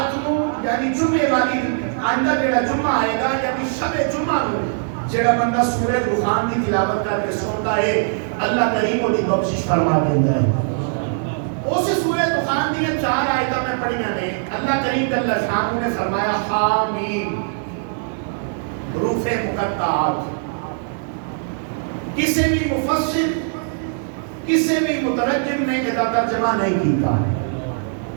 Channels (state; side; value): silent; left; digital silence